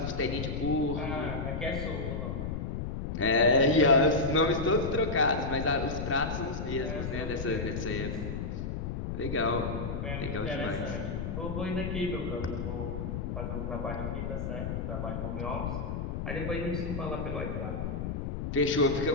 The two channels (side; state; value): left; noise; rumble, 3 dB below the sound